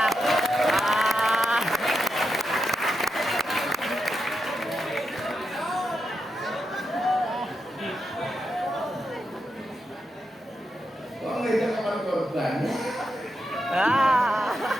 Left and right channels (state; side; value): normal; both; correlation 0.85